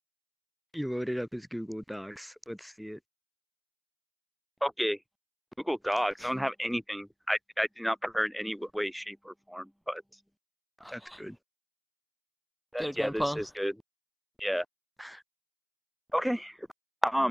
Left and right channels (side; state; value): both; identical; correlation 1.00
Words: He loaded up his Google Docs. Let's see it. Okay, Google Docs. I don't have anything. I do not prefer in any way, shape, or form. But That's good. Good, yeah, Grandpa. this is good. Yeah. Okay.